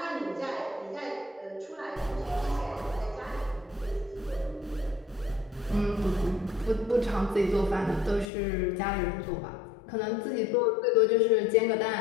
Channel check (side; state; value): right; drops out; at 8.2 s